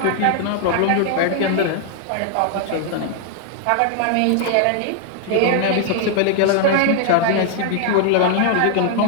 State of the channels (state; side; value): different; both; correlation 0.00